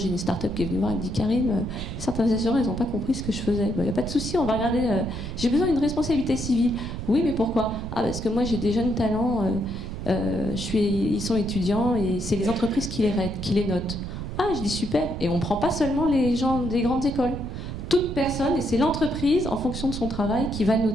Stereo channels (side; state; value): right; noise; rumble, 7 dB below the sound